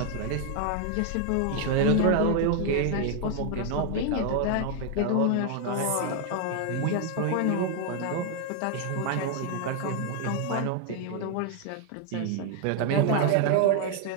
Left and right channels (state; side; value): different; both; correlation 0.00